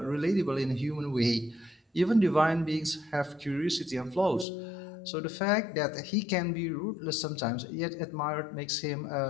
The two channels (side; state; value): right; drops out; at 4.5 s